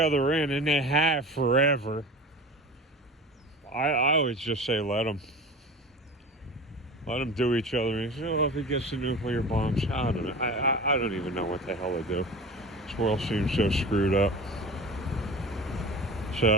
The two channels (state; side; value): normal; both; correlation 0.34